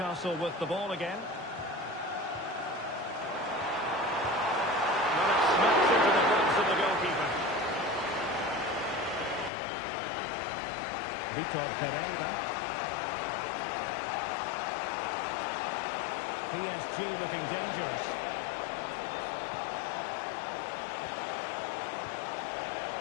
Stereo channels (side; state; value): right; drops out; at 9.5 s